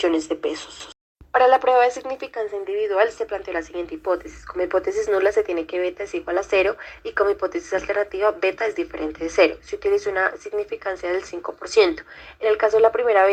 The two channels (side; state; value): both; identical; correlation 1.00